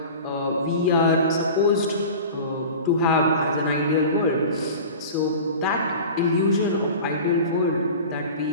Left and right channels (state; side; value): inverted; both; correlation -0.36